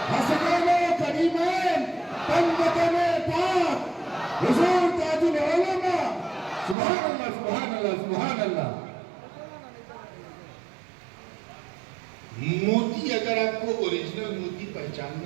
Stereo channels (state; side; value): drops out; left; at 6.8 s